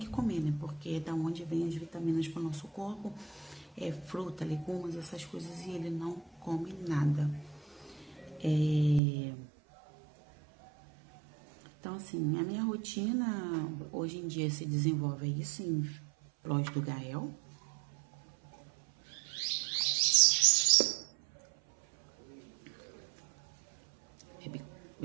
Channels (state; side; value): drops out; left; at 9.0 s